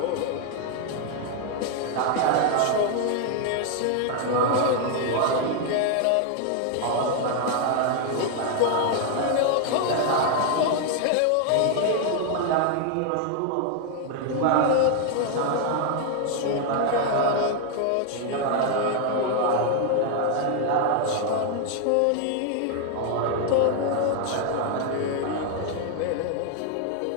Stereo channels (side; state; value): both; different; correlation 0.00